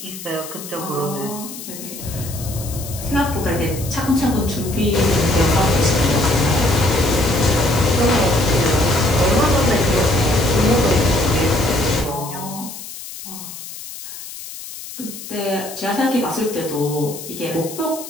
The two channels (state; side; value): noise; left; hiss, 12 dB below the sound